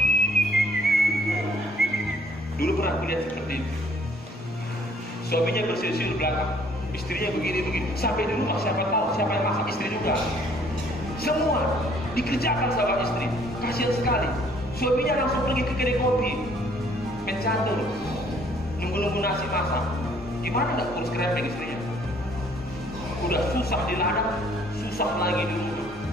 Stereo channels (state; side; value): normal; both; correlation 0.60